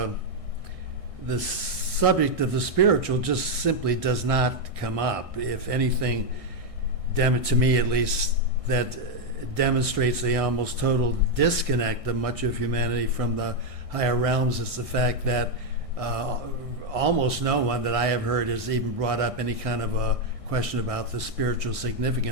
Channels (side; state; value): left; late; 1.6 ms